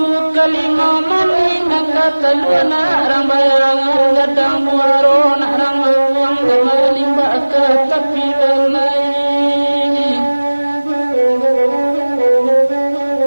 kalima mani nangkataluna rambayang gadang muaro narang uang gamalimba ka tapi dalai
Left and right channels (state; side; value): inverted; both; correlation -1.00